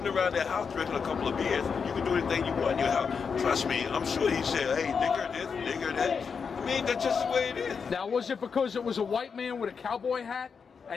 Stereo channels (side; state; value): right; quieter; 5.9 dB